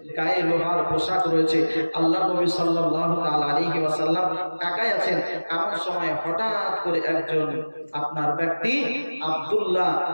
গায়ে লোহার পোশাক রয়েছে। আল্লাহ নবী সাল্লাল্লাহু তাআলা আলাইহি ওয়াসাল্লাম একাই আছেন। এমন সময় হঠাৎ করে একজন আপনার ব্যক্তি আব্দুল্লাহ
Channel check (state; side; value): inverted; both; correlation -1.00